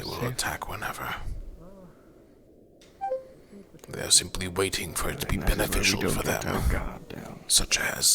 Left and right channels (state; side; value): identical; both; correlation 1.00